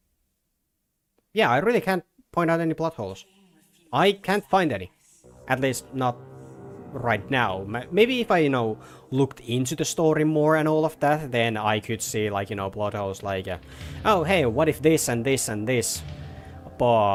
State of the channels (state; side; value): identical; both; correlation 1.00